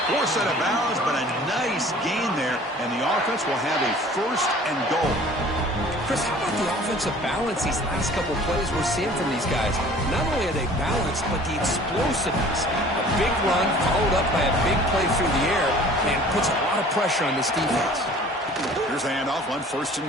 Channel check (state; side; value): normal; both; correlation 0.48